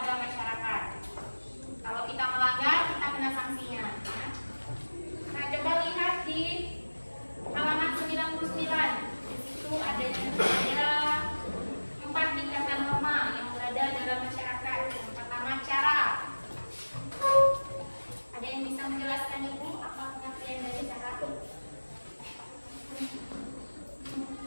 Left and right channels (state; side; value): inverted; both; correlation -1.00